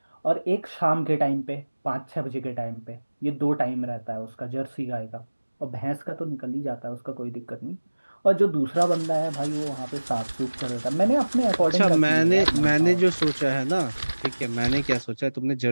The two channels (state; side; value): inverted; both; correlation -1.00